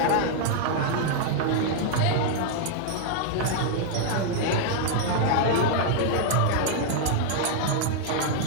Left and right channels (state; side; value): different; both; correlation 0.00